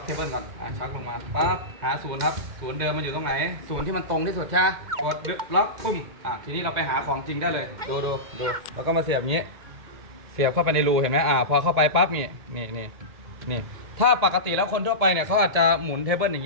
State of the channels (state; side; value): late; left; 2.1 ms